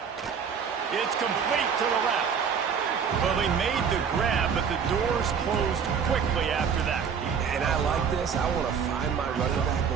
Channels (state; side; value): quieter; left; 6.8 dB